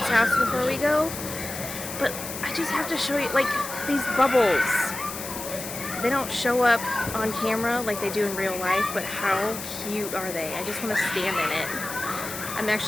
house before we go. But I just have to show you, like, these bubbles. They don't show up on camera like they do in real life, but how cute are they? I just want to stand in it. I'm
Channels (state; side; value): noise; left; hiss, 8 dB below the sound